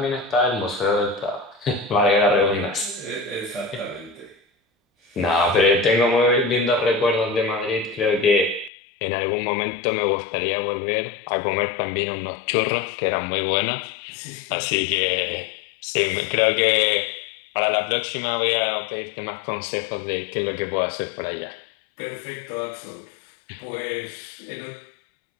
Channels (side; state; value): right; drops out; at 8.7 s